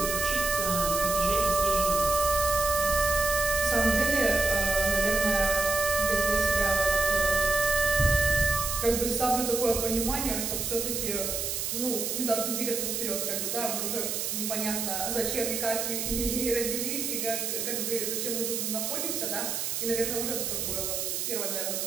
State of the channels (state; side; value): noise; right; hiss, 2 dB below the sound